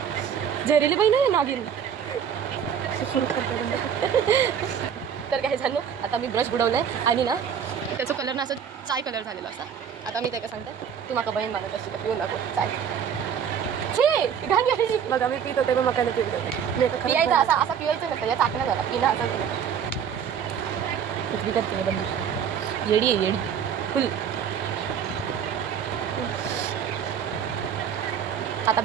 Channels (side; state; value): left; quieter; 8.0 dB